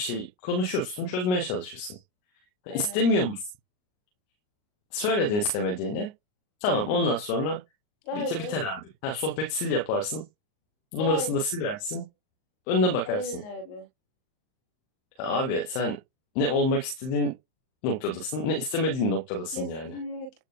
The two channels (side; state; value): right; late; 38 ms